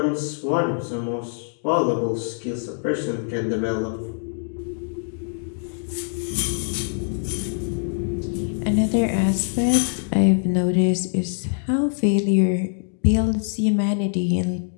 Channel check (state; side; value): silent; right; digital silence